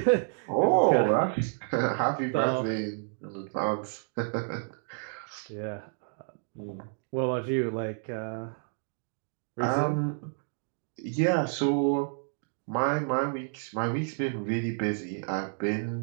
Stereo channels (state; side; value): silent; left; 58 dB below the other